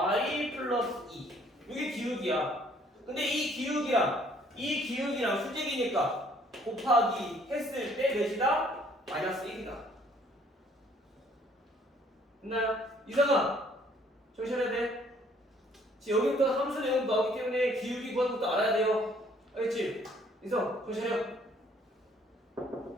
플러스 2. 이게 기울기야. 근데 이 기울기랑 수직이니까 곱하기 했을 때 몇이다? 마이너스 1이다. 됐나요? 이상아 정신해야 돼. 지금 여기부터 함수 내용 나오기 때문에 기울기 구하는 것도 알아야 돼요. 알겠지? 이성 정신해요.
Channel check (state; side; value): normal; both; correlation 0.61